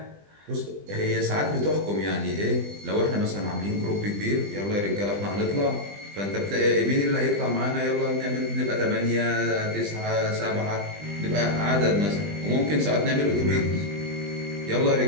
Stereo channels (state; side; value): late; left; 20 ms